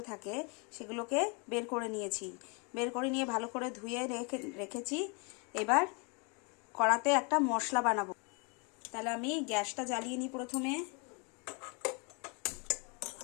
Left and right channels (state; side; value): quieter; right; 33.4 dB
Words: থাকে, সেগুলোকে বের করে নিয়েছি। বের করে নিয়ে ভালো করে ধুয়ে রেখেছি। এবার কড়াতে একটা মশলা বানাবো। তাহলে আমি গ্যাসটা জ্বালিয়ে নিই। প্রথমে